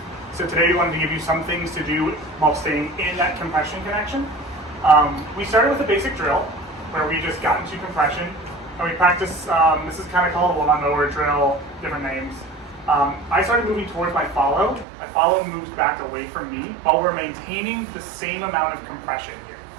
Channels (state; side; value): drops out; left; at 14.9 s